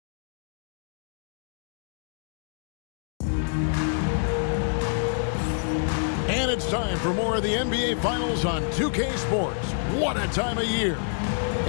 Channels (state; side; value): silent; right; digital silence